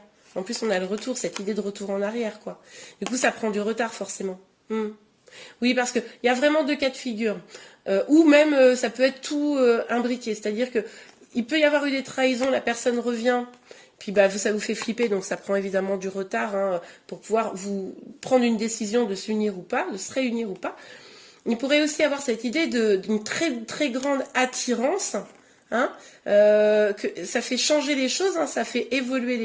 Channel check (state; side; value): identical; both; correlation 1.00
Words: En plus, on a le retour, cette idée de retour en arrière, quoi. Du coup, ça prend du retard, forcément. Hmm. Oui, parce qu'il y a vraiment deux cas de figure. Ou même, ça peut être tout imbriqué. C'est-à-dire que il peut y avoir eu des trahisons, la personne revient, puis bah, ça vous fait flipper, donc ça prend évidemment du retard hein, pour pouvoir vous prendre une décision de s'unir ou pas, de se réunir ou pas. Il pourrait aussi avoir cette idée d'une très, très grande attirance, hein, que ça fait changer les choses, hein, ça fait évoluer